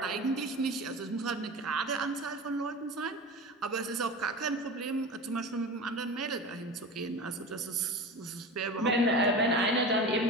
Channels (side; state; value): both; normal; correlation 0.31